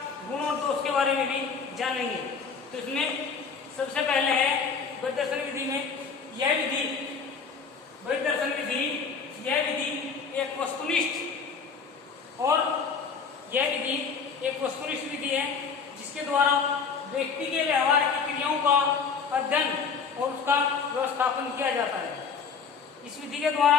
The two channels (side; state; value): right; quieter; 5.7 dB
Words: गुण और दोष के बारे में भी जानेंगे। तो इसमें सबसे पहले है परिदर्शन विधि में यह विधि एक वस्तुनिष्ठ और यह विधि एक वस्तुनिष्ठ विधि है जिसके द्वारा व्यक्ति के व्यवहार की क्रियाओं का अध्ययन और उसका व्यवस्थापन किया जाता है। इस विधि के